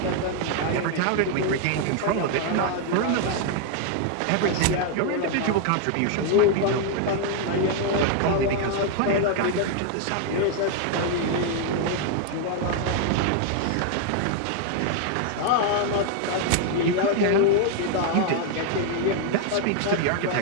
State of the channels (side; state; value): both; different; correlation 0.00